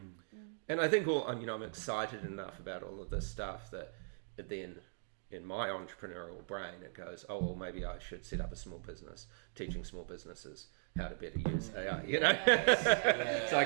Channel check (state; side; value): silent; left; digital silence